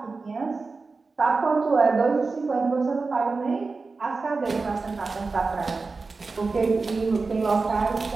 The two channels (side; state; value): left; quieter; 4.1 dB